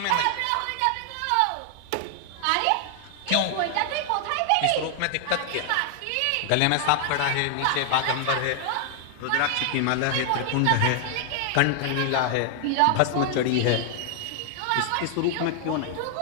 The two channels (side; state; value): both; different; correlation 0.00